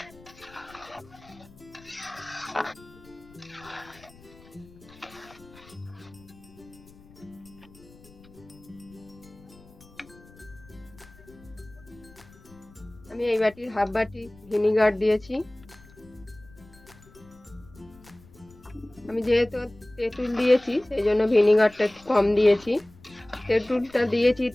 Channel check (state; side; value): noise; left; rumble, 23 dB below the sound